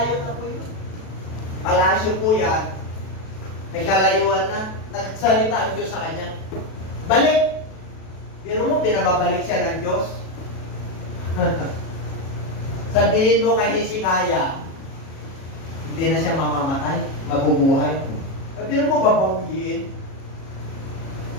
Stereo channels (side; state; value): right; late; 37 ms